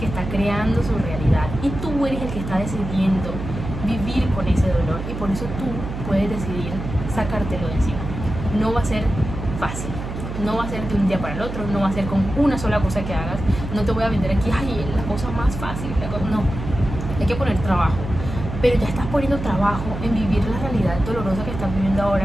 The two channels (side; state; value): right; noise; hum, 7 dB below the sound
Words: está creando su realidad, y tú eres el que está decidiendo vivir con ese dolor, y por eso tú puedes decidir sacártelo de encima. No va a ser fácil, no va a ser de un día para el otro, no va a ser con una sola cosa que hagas. No te voy a vender aquí, ay, la cosa más fácil, no, hay que poner trabajo, pero ya estás poniendo trabajo en vivir la realidad dolorosa que estás viviendo